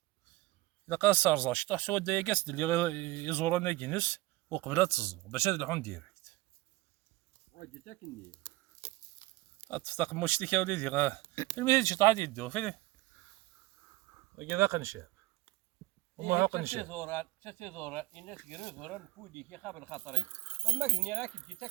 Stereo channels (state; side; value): quieter; left; 19.5 dB